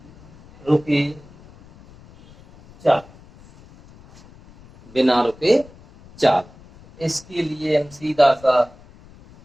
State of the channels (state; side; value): noise; left; rumble, 24 dB below the sound